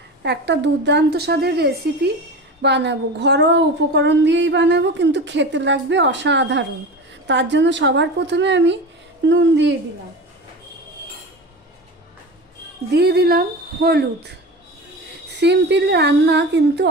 একটা দুর্দান্ত স্বাদের রেসিপি বানাবো, ঘরোয়া উপকরণ দিয়েই বানাবো, কিন্তু খেতে লাগবে অসাধারণ। তার জন্য সবার প্রথমে আমি নুন দিয়ে দিলাম হলুদ। সিম্পল রান্না কিন্তু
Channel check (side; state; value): both; normal; correlation 0.29